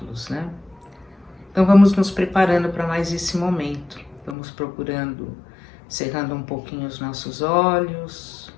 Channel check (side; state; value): right; drops out; at 4.4 s